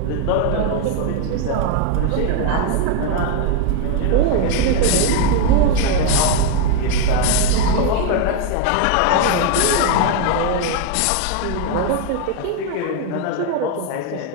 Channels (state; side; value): different; both; correlation 0.01